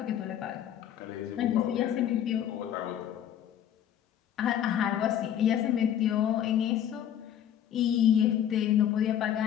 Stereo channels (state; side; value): quieter; right; 10.2 dB